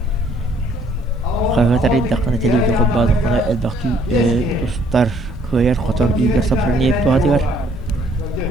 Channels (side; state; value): both; normal; correlation 0.63